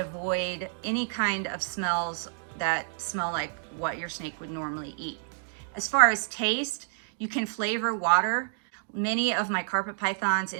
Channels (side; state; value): left; silent; digital silence